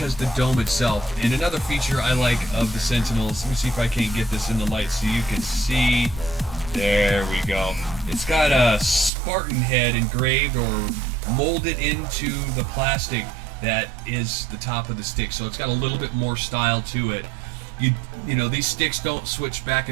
the dome itself. And another feature I like of the Sentinels, let me see if I can't get this in the light so you can see. There we go. It's got a Spartan head engraved or molded into the plastic that is the top of the stick, so it's got a little bit more style to it. You know, these sticks don't switch back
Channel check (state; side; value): drops out; left; at 9.1 s